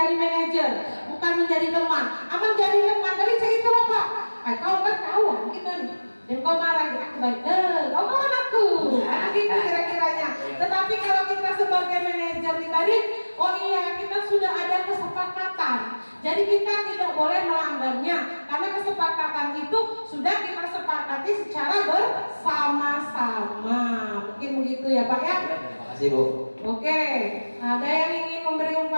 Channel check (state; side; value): inverted; both; correlation -1.00